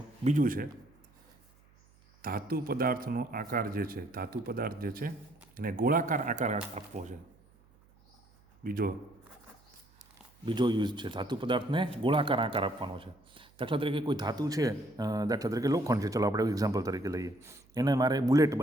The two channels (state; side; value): noise; right; hum, 30 dB below the sound